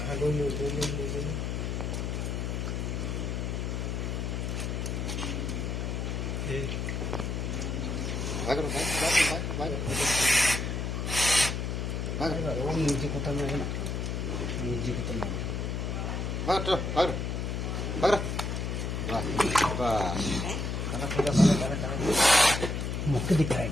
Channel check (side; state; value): left; noise; hum, 2 dB below the sound